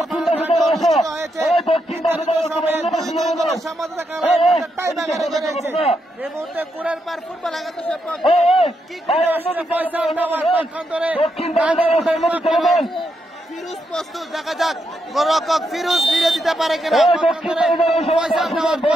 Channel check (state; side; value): normal; both; correlation 0.81